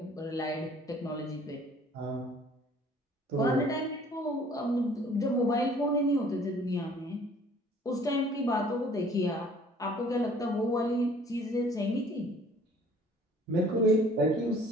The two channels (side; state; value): both; normal; correlation 0.54